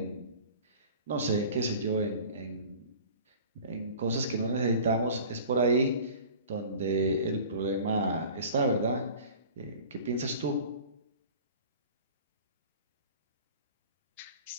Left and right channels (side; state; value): both; inverted; correlation -0.42